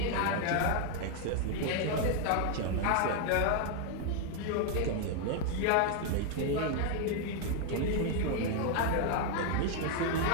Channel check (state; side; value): different; both; correlation 0.00